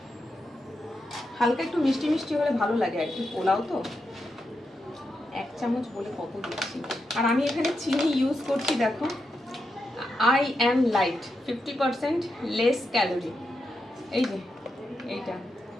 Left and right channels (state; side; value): normal; both; correlation 0.86